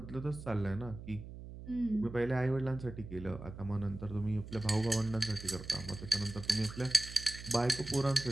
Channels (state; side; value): noise; right; hum, 12 dB below the sound